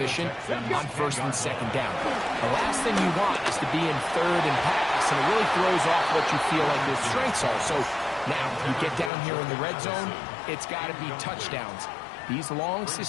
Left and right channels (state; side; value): drops out; right; at 9.1 s